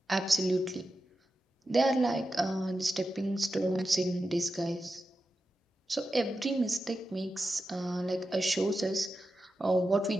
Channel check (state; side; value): normal; both; correlation 0.90